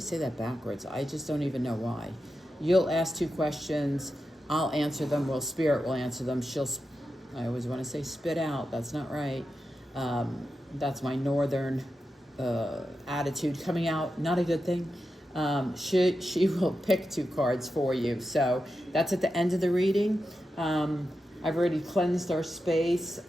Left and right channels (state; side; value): normal; both; correlation 0.89